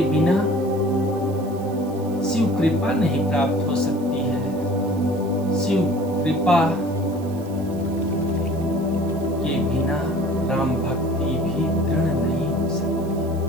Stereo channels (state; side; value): noise; right; hiss, 23 dB below the sound